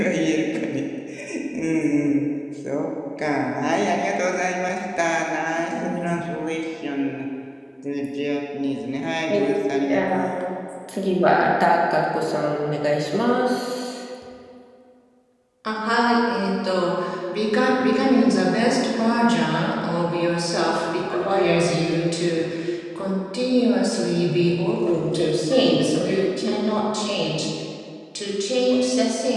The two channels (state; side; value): identical; both; correlation 1.00